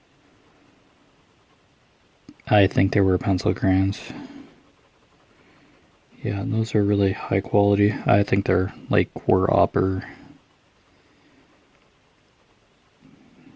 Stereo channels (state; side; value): identical; both; correlation 1.00